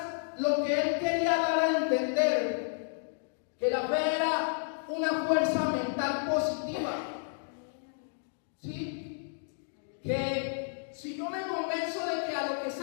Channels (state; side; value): silent; right; digital silence